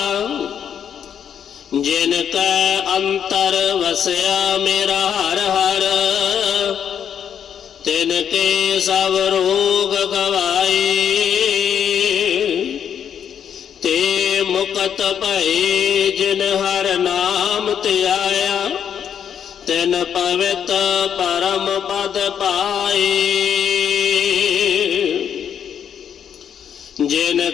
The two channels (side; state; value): right; quieter; 8.5 dB